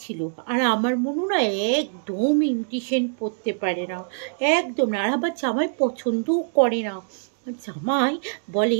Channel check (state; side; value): silent; left; digital silence